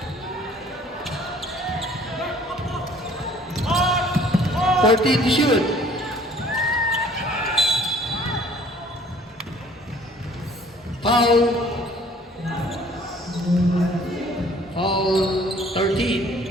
14 to shoot. Foul. Foul 13.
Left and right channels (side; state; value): both; normal; correlation 0.55